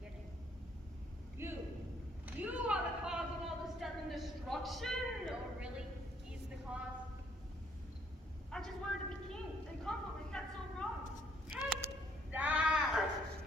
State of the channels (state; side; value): normal; both; correlation 0.67